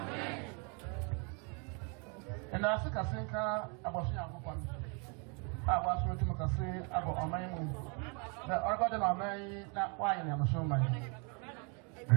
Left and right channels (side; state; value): left; quieter; 35.2 dB